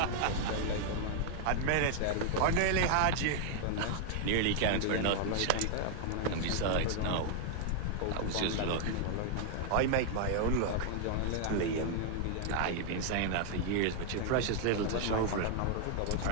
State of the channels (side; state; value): both; different; correlation 0.00